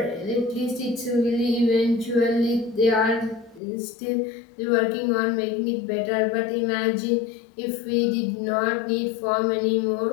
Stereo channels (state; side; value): drops out; right; at 3.6 s